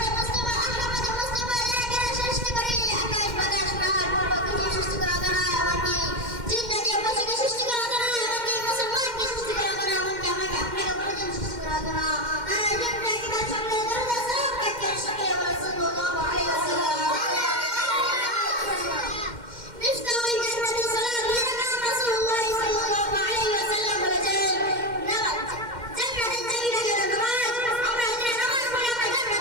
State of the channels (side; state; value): left; late; 2.1 ms